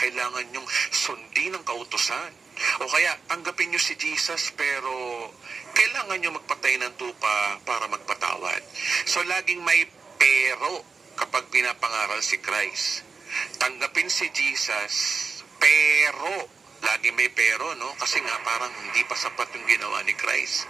niyong sundin ang kautusan. O kaya, tanggapin niyo si Jesus, pero kailangan niyo magpatay ng tupa para magpatawad. So, laging may pero kapag pinapangaral si Christ. Tanggapin si Jesus, pero lagi may pero, no? Kasi nga parang hindi pa sapat yung ginawa ni Christ.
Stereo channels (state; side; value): quieter; left; 4.8 dB